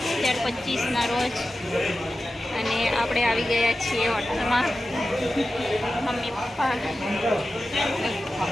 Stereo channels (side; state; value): both; normal; correlation 0.93